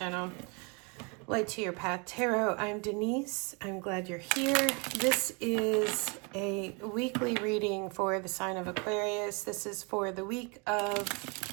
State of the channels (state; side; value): quieter; left; 32.0 dB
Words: Light to Your Path Tarot. I'm Denise. I'm glad you're here. This is a weekly reading for the sign of Aquarius. This is for the week of